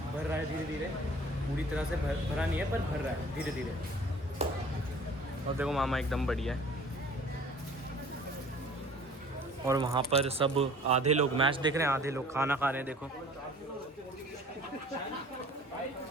रहा है धीरे धीरे, पूरी तरह से भरा नहीं है पर भर रहा है धीरे धीरे। और देखो मामा एकदम बढ़िया है। और वहाँ पर सब आधे लोग मैच देख रहे हैं, आधे लोग खाना खा रहे हैं। देखो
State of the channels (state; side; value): normal; both; correlation 0.49